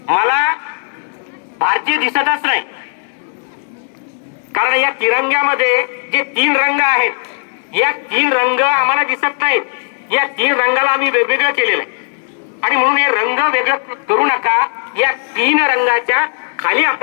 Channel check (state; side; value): silent; right; digital silence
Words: मला भारतीय दिसतच नाही, कारण या तिरंग्यामध्ये जे 3 रंग आहेत, या 3 रंग आम्हाला दिसत नाहीत. या 3 रंगाला आम्ही वेगवेगळं केलेलं आहे, आणि म्हणून हे रंग वेगळं करू नका. या 3 रंगाच्या खाली